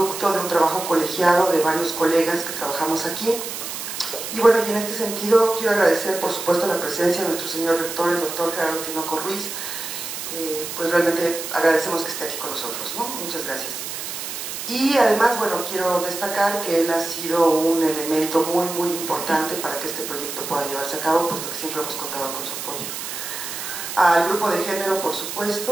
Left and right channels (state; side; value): noise; right; hiss, 7 dB below the sound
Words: de un trabajo colegiado de varios colegas que trabajamos aquí. Y bueno, y en este sentido quiero agradecer por supuesto la presencia de nuestro señor rector, el doctor Gerardo Tinoco Ruiz. Pues realmente agradecemos que esté aquí con nosotros, ¿no? Muchas gracias. Y además, bueno, quiero destacar que él ha sido un elemento muy importante para que este proyecto pueda llevarse a cabo, puesto que siempre hemos contado con su apoyo. Al grupo de género, por